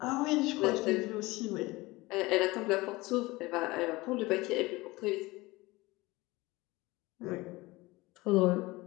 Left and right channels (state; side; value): quieter; right; 21.3 dB